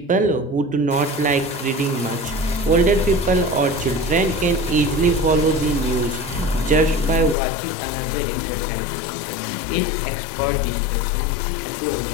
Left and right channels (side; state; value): right; drops out; at 7.4 s